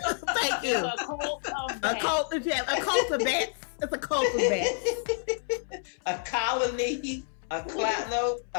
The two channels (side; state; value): right; silent; 59 dB below the other